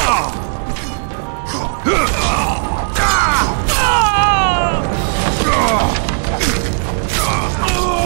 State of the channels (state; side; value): silent; left; digital silence